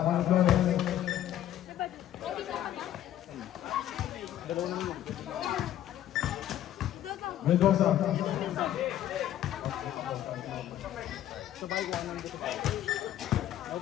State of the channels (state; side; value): quieter; right; 12.0 dB